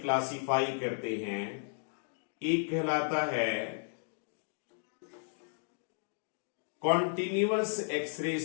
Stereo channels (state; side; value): silent; right; digital silence